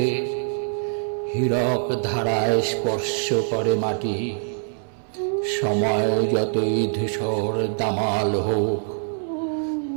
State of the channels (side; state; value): left; silent; digital silence